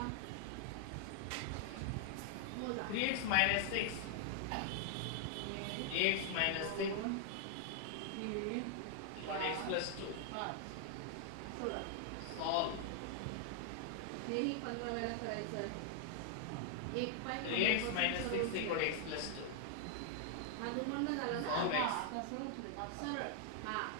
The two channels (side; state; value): both; different; correlation 0.00